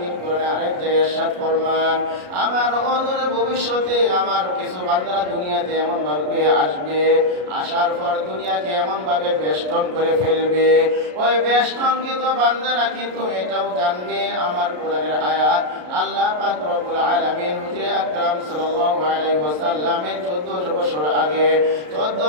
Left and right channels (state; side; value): late; left; 33 ms